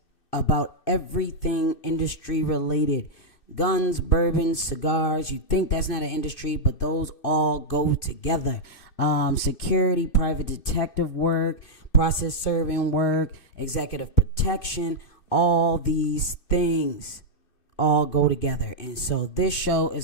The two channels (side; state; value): right; late; 2.6 ms